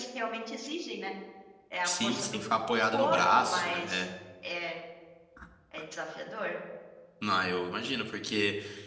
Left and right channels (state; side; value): identical; both; correlation 1.00